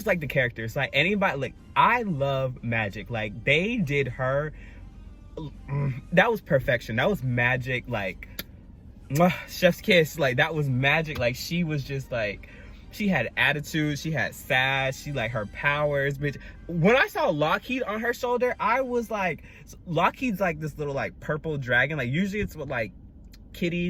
like the characters. Like anybody, like I love Magic. Like they did her. That was perfection. That was Magic. Like chef's kiss. Like that was Magic. Like she was just like, she had attitude, she had sass, she like her powers, bitch. When I saw Lockheed on her shoulder, I was like, Lockheed's like this little like purple dragon. Like usually it's what like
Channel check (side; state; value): both; identical; correlation 1.00